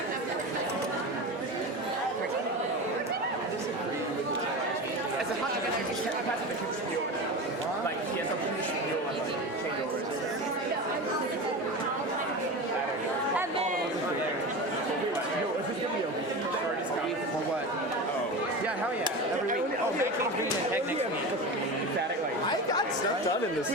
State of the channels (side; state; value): both; normal; correlation 0.26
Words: As a part of the spiel, like he has a spiel on like changeovers. Yo, is this gonna be a for what? Oh. Yeah, hell yeah. Every week. Oh, Mackey's bringing a tech next week. Static, like. I got stuff done in the